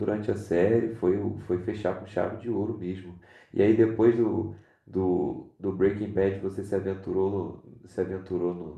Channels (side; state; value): both; identical; correlation 1.00